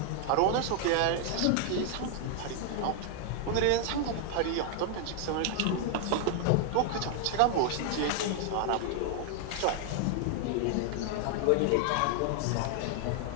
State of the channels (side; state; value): both; different; correlation 0.00